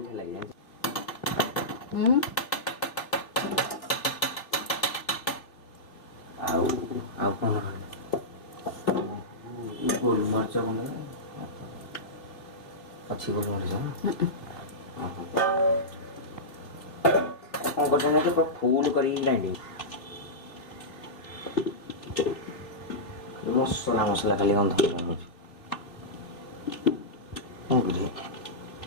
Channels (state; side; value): late; right; 3.1 ms